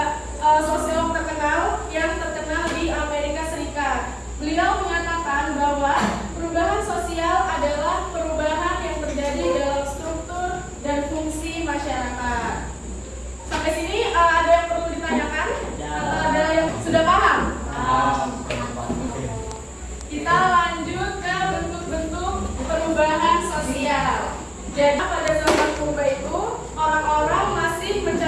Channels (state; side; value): identical; both; correlation 1.00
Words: sosiolog terkenal yang terkenal di Amerika Serikat. Beliau mengatakan bahwa perubahan sosial adalah perubahan yang terjadi dalam struktur dan fungsi masyarakat. Sampai sini ada yang perlu ditanyakan? Atau ada yang sudah paham? Kita lanjut ke bentuk-bentuk perubahan sosial. Jadi pada zaman purba itu orang-orang masih